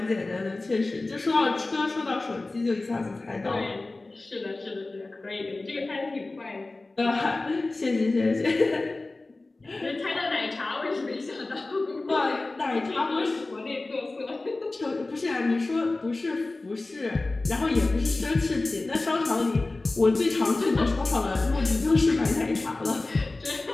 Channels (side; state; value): right; quieter; 3.2 dB